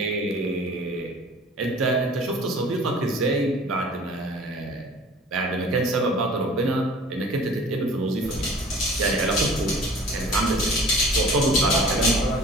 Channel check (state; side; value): normal; both; correlation 0.46